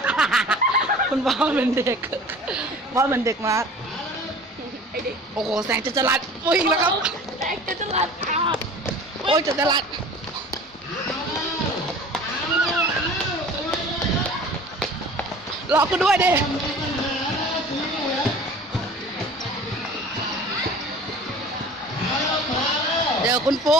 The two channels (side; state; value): both; normal; correlation 0.43